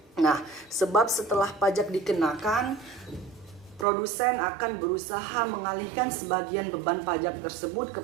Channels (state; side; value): drops out; left; at 3.9 s